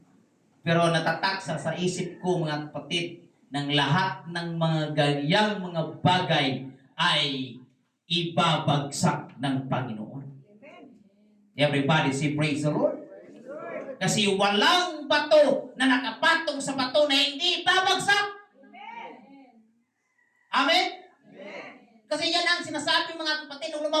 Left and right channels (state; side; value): identical; both; correlation 1.00